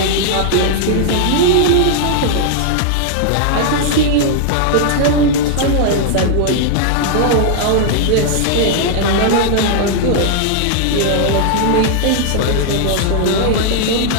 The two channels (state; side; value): different; both; correlation -0.01